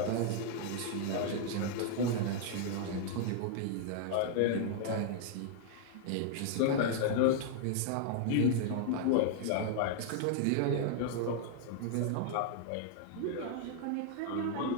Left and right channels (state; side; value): different; both; correlation -0.01